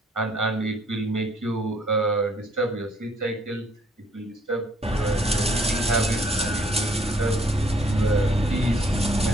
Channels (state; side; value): normal; both; correlation 0.64